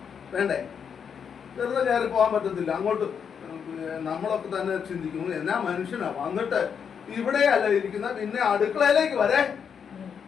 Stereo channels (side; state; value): right; quieter; 7.1 dB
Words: വേണ്ടേ? വെറുതെ കയറി പോകാൻ പറ്റത്തില്ല. അങ്ങോട്ട് നമ്മളൊക്കെ തന്നെ ചിന്തിക്കുന്നു, എന്നാ മനുഷ്യനാ വന്നിട്ട് ഇവിടെയല്ല ഇരിക്കുന്ന, പിന്നെ അടുക്കളയിലേക്ക് വരെ